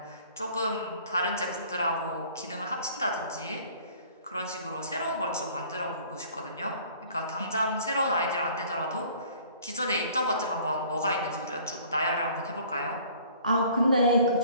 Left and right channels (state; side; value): inverted; both; correlation -0.52